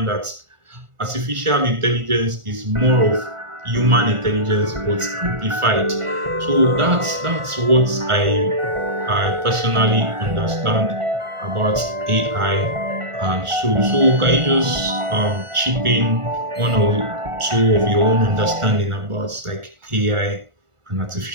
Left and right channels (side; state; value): left; late; 1.4 ms